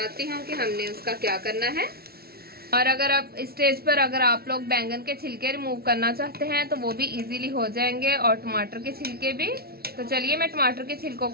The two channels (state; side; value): late; left; 0.45 ms